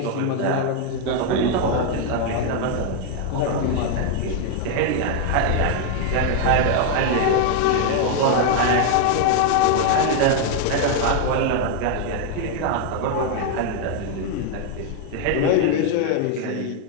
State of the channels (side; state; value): both; different; correlation 0.00